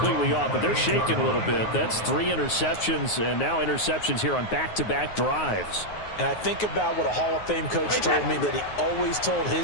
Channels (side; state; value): right; late; 9.5 ms